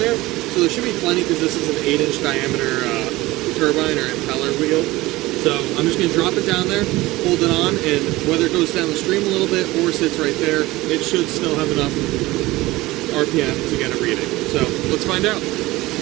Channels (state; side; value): quieter; left; 19.3 dB